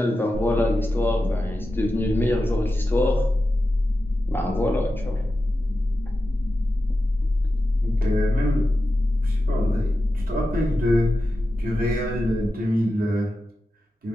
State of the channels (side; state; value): both; normal; correlation 0.91